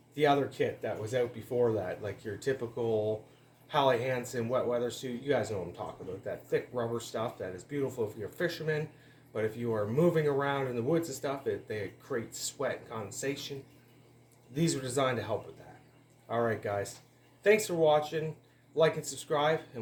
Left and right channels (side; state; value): both; identical; correlation 1.00